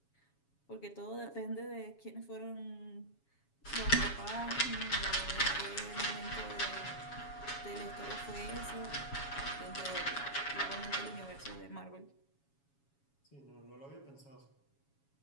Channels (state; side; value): late; right; 7.2 ms